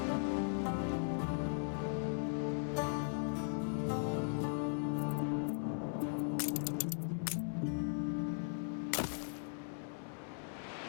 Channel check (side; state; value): right; silent; digital silence